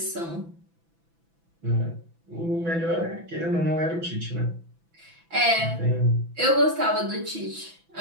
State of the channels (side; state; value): left; late; 6.0 ms